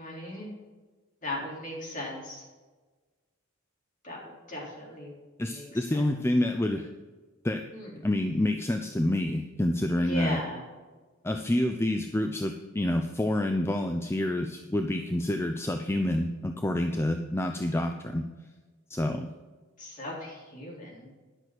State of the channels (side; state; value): both; normal; correlation 0.85